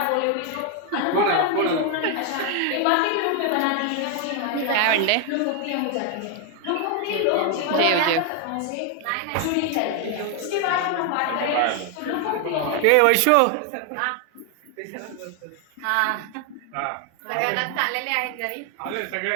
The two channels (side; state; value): both; different; correlation 0.01